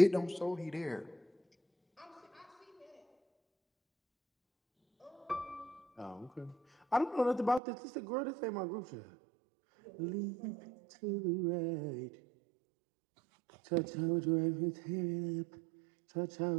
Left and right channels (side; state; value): left; drops out; at 7.6 s